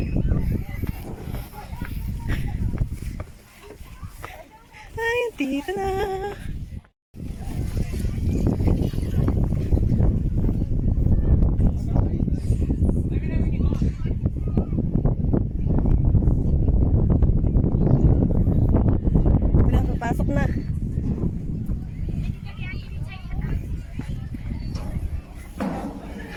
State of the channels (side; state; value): both; identical; correlation 1.00